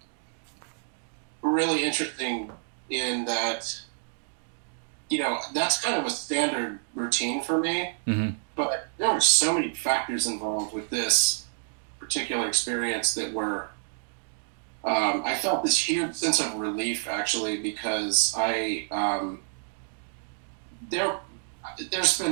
really interesting in that, that's kind of a standard routine for me. Mm-hmm. But there were so many factors involved with this particular experience that were, I felt this huge sense of relief actually, because there's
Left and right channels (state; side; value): silent; left; digital silence